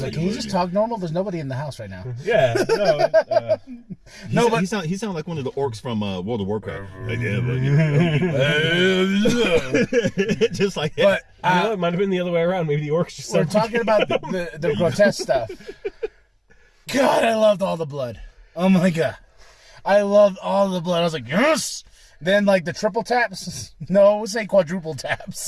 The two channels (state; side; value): identical; both; correlation 1.00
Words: like, can you just talk normal? There's nobody in the house right now. Yeah, no. He sound like one of the orcs from World of Warcraft. Just like that. But it might have been the other way around. Maybe the orcs just. We're talking about the grotesque stuff. God, I loved all the blood. Oh my god, I loved all the blood. I was like, yes. Then, like, the triple taps? No, we'll say quadruple